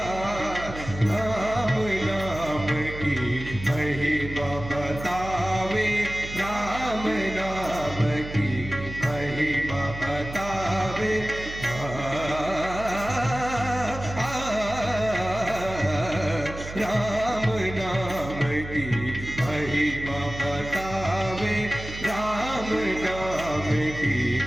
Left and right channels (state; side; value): noise; right; hum, 11 dB below the sound